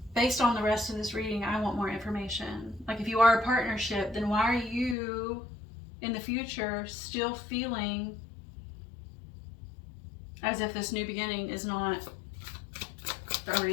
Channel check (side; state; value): right; drops out; at 5.0 s